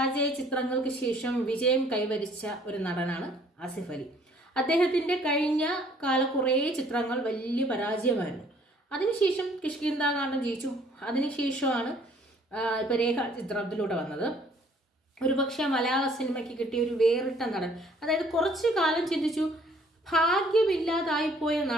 ചിത്രങ്ങൾക്ക് ശേഷം വിജയം കൈവരിച്ച ഒരു നടനാണ് ആസിഫ് അലി. അദ്ദേഹത്തിൻ്റെ കഴിഞ്ഞ കാല കുറേ ചിത്രങ്ങൾ വലിയ പരാജയമായിരുന്നു. അതിനുശേഷം കിഷ്കിന്ധാകാന്ഡം ജയിച്ചു. അതിനുശേഷമാണ് ഇപ്പോൾ രേഖ ചിത്രത്തിലൂടെ വന്നത്. ഒരുപക്ഷെ മലയാള സിനിമയ്ക്ക് കിട്ടിയ ഒരു വേറിട്ട നടൻ. അതായത് കുറച്ചു കാലം ചിന്തിച്ചു, ഭാഗ്യമില്ലാതായിപ്പോയ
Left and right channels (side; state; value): both; normal; correlation 0.59